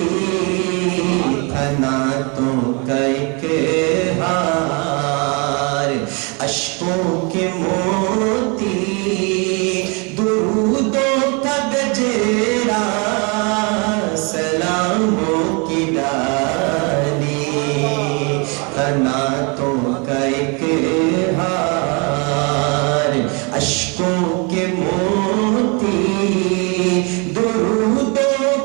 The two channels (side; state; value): left; quieter; 32.4 dB